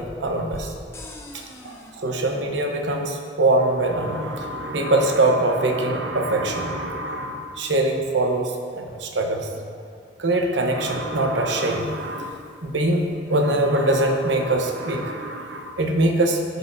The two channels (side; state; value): both; normal; correlation 0.13